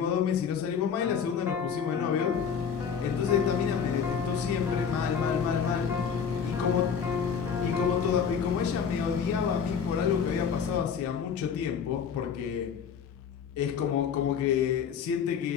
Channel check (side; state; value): right; quieter; 7.0 dB